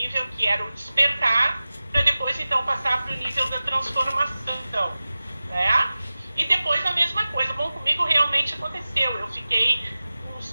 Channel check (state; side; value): inverted; both; correlation -0.96